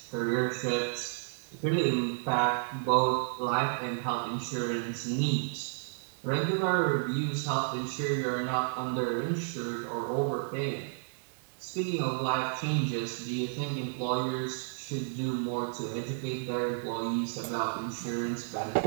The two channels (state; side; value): silent; left; digital silence